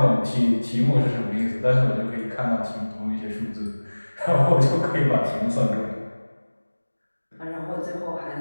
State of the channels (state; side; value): inverted; both; correlation -1.00